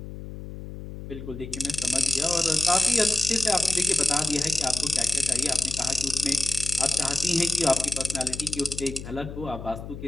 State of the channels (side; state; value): left; noise; hum, 11 dB below the sound